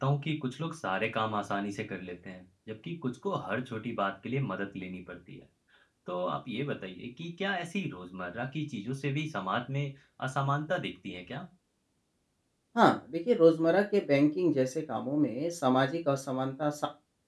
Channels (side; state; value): both; identical; correlation 1.00